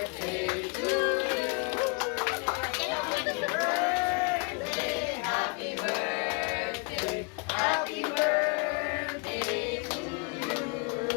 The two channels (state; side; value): quieter; right; 32.4 dB